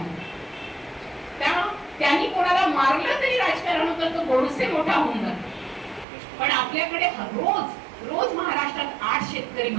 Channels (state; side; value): drops out; left; at 6.1 s